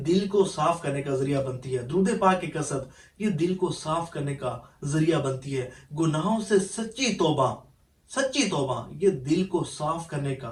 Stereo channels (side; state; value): both; identical; correlation 1.00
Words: دل کو صاف کرنے کا ذریعہ بنتی ہے، درود پاک کی کثرت یہ دل کو صاف کرنے کا ذریعہ بنتی ہے، گناہوں سے سچی توبہ یہ دل کو صاف کرنے